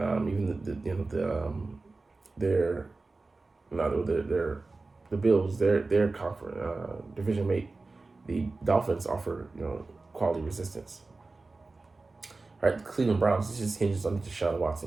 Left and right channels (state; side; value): quieter; left; 3.6 dB